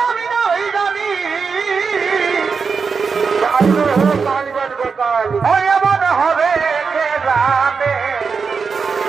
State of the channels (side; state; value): left; quieter; 5.3 dB